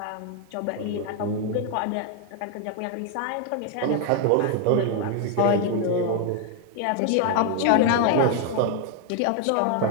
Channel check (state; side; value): different; both; correlation 0.01